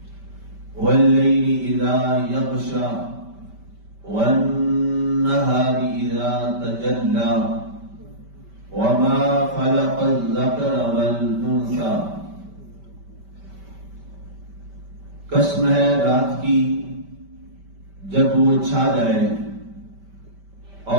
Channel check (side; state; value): left; late; 5.1 ms